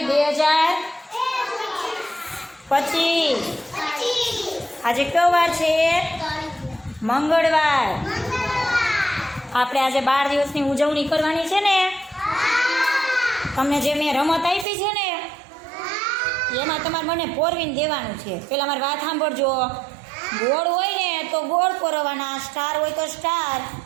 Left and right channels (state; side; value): drops out; left; at 14.7 s